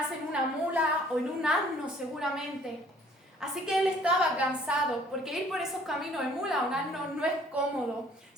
en una mula o en un asno seguramente. Así que él estaba cansado, porque ir por esos caminos de mula o un asno no es cómodo.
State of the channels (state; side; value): normal; both; correlation 0.57